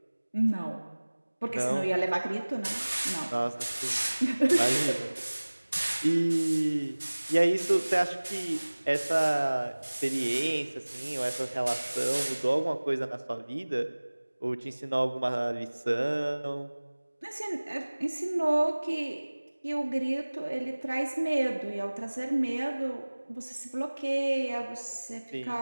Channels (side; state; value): both; inverted; correlation -1.00